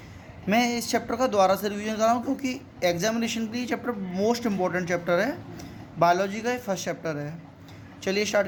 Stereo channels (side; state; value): both; identical; correlation 1.00